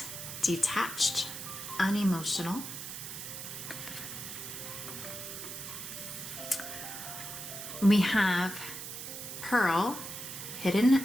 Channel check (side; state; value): right; noise; hiss, 8 dB below the sound